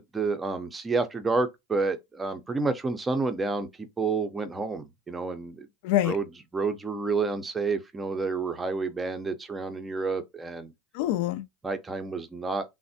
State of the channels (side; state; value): both; normal; correlation 0.57